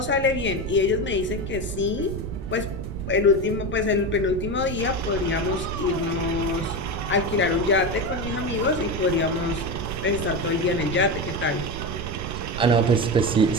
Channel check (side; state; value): right; noise; rumble, 6 dB below the sound